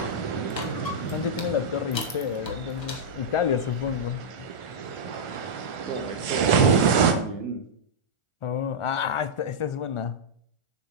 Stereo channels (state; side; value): late; right; 1.4 ms